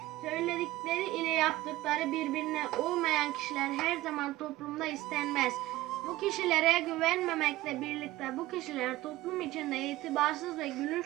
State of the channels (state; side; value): quieter; left; 17.2 dB